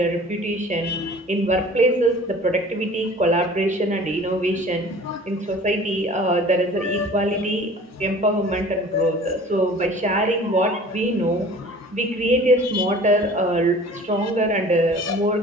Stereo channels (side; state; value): both; normal; correlation 0.46